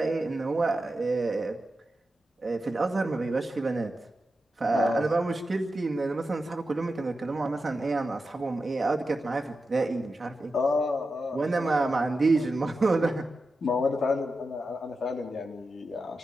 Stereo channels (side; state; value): both; normal; correlation 0.90